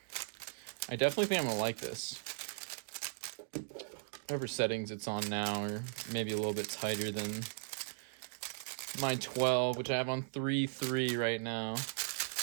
I definitely think I'm gonna like this. Whatever settings it's on now, or maybe a little bit tighter than my 12, which I have on 3.3 right now.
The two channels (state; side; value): silent; left; digital silence